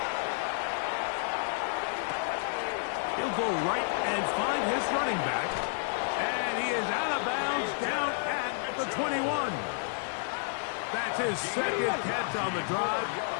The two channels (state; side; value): silent; right; digital silence